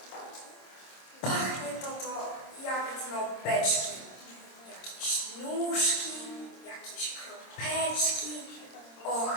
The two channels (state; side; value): late; right; 26 ms